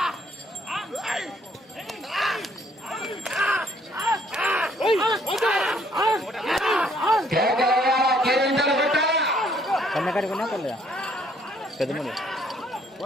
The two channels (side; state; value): both; normal; correlation 0.65